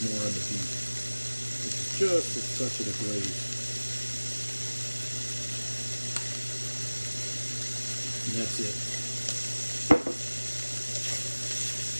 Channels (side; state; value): both; inverted; correlation -1.00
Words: on the beef. This is just a touch of the glaze. And that's it.